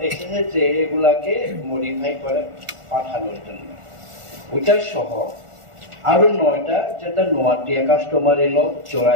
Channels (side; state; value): left; late; 1.4 ms